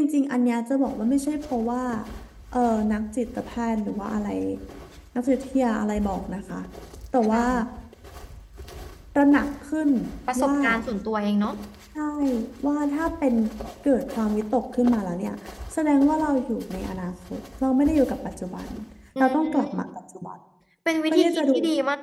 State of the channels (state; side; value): identical; both; correlation 1.00